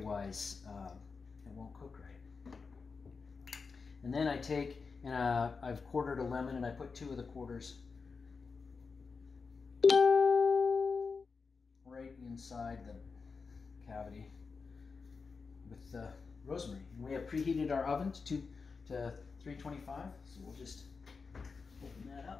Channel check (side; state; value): right; quieter; 4.8 dB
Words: it won't cook right. And then I take, and I've quartered a lemon, and I put 2 of the quarters right inside the cavity. with rosemary. And we have preheated our oven to 325, so we'll just open that